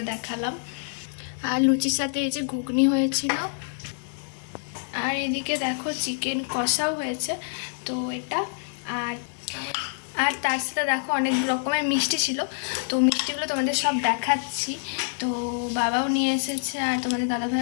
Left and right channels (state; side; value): silent; right; digital silence